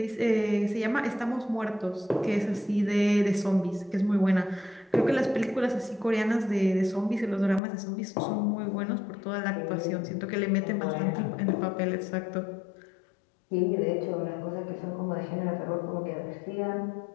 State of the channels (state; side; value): drops out; right; at 7.6 s